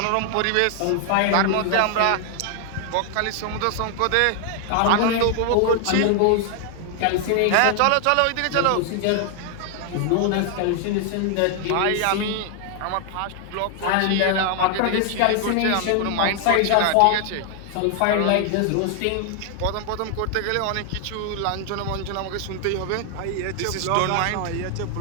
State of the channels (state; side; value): different; both; correlation 0.00